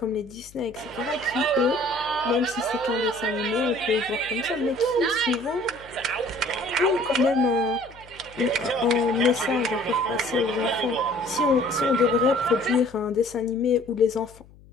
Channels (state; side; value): noise; left; hum, 24 dB below the sound